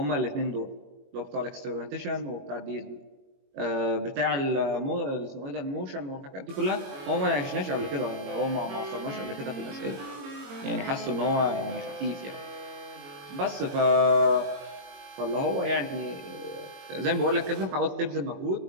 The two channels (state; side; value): late; left; 22 ms